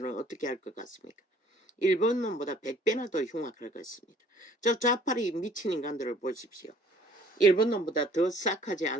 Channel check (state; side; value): normal; both; correlation 0.56